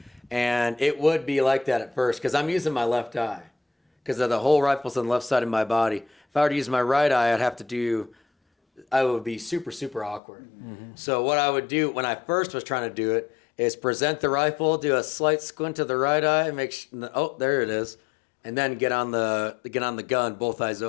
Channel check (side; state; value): right; drops out; at 10.2 s